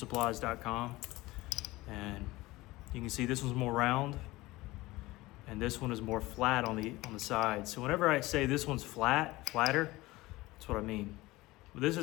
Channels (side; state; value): right; quieter; 19.6 dB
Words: And you can see this one's more round. And this one is more flat on the side. So whenever I say this one's flatter, that's what I mean. But this